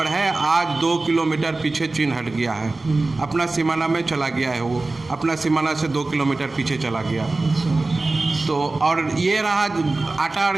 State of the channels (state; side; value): quieter; left; 3.3 dB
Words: है, आज 2 किलोमीटर पीछे चीन हट गया है, अपना सीमाना में चला गया है। वो अपना सीमाना से 2 किलोमीटर पीछे चला गया। तो और ये रहा आटा और